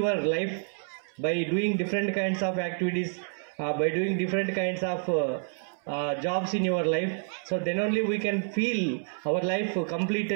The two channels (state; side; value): silent; left; 59 dB below the other